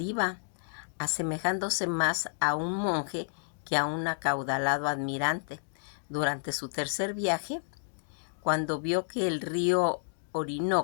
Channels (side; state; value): right; silent; digital silence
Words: iba, asemejándose más a un monje que a un acaudalado admirante. Durante su tercer viaje, cuando vio que el río